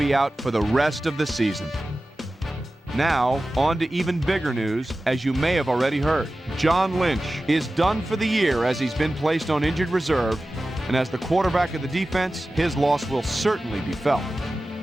out for the rest of the season. Now, on to even bigger news, as you may have already heard. John Lynch is done for the year as he's been placed on injured reserve, and as the quarterback of the defense, his loss will certainly be felt.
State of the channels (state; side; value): normal; both; correlation 0.95